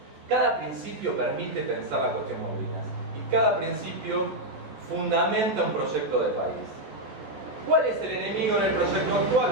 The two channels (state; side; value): late; left; 14 ms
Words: Cada principio permite pensar la cuestión Malvinas y cada principio fundamenta un proyecto de país. ¿Cuál es el enemigo en el proyecto actual?